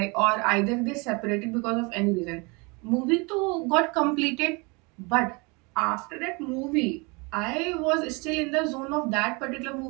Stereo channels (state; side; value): quieter; left; 28.7 dB